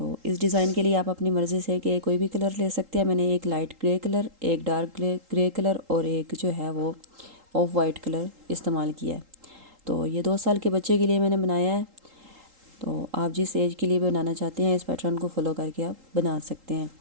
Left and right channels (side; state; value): left; late; 3.8 ms